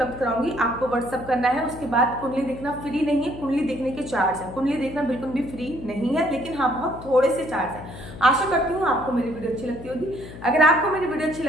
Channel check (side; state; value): left; noise; hum, 14 dB below the sound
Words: कराऊंगी, आपको व्हाट्सअप करना है। उसके बाद कुंडली देखना फ्री नहीं है, कुंडली देखने के चार्ज है, कुंडली देखना बिल्कुल भी फ्री नहीं है, लेकिन हाँ बहुत थोड़े से चार्ज है। आशा करती हूँ आपको मेरी वीडियो अच्छी लगती होगी। अगर आपको मेरी वीडियो अच्छी